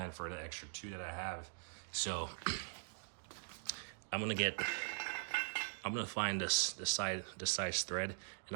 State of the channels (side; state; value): left; silent; digital silence